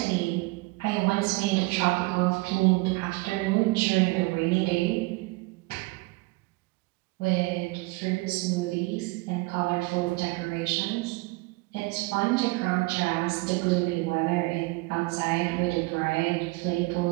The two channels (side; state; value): left; quieter; 24.2 dB